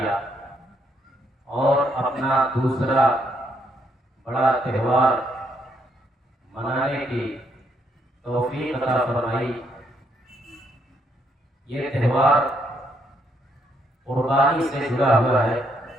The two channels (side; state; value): both; normal; correlation 0.74